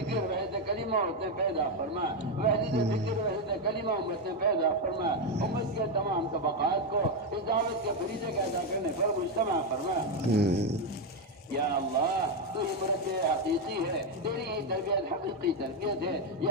فکر وحدت کلمہ امت نے پیدا فرما، وحدت فکر وحدت کلمہ امت نے پیدا فرما، امت کے تمام طبقات کو اس دعوت کے فریضے کا ادا کرنے پر مجتمع فرما۔ یا اللہ تو ہی مربی حقیقی ہے، تیری ہی تربیت حقیقی تربیت ہے،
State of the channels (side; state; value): both; normal; correlation 0.06